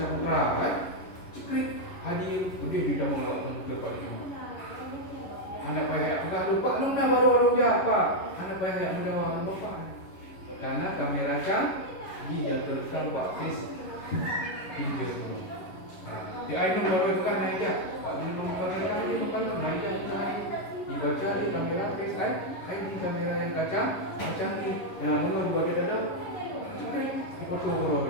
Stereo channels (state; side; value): late; right; 11 ms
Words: kan? Cekrik haji itu dia tidak mengelak ke Pak Jom. Anak payah enggak lupa lu nak baru orang apa? Anak payah menjawab bapak. Karena kamera canggih yang terekam Pak Fis pinjol dulu. Di idol baru bukan naik ya. Pak ini menggunakan kali bukan naik ya. Dibaca di kamera Face ID kamera yang kacang ni. Yang menurut buat dia ada di foto